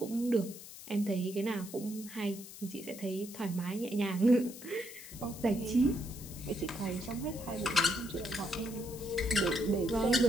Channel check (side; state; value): left; noise; hiss, 14 dB below the sound